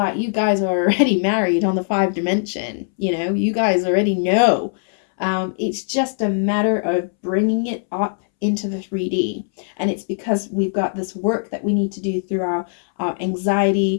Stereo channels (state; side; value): silent; right; 66 dB below the other